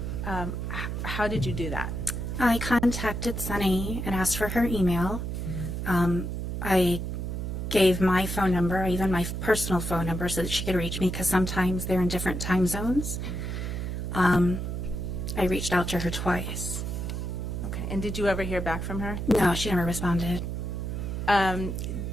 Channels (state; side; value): noise; right; hum, 3 dB below the sound